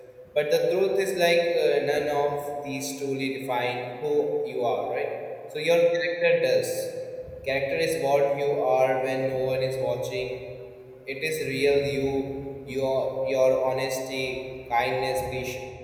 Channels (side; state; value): both; identical; correlation 1.00